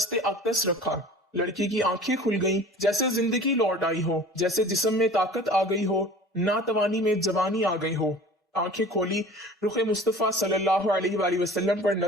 اقدس رکھا۔ لڑکی کی آنکھیں کھل گئیں، جیسے زندگی لوٹ آئی ہو، جیسے جسم میں طاقت آ گئی ہو، ناتوانی میں جوانی آ گئی ہو۔ آنکھیں کھولی، رخ مصطفیٰ صلی اللہ علیہ وآلہ وسلم پر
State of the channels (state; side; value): normal; both; correlation 0.43